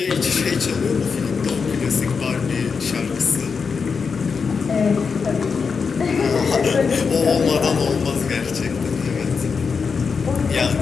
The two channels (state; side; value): quieter; right; 5.5 dB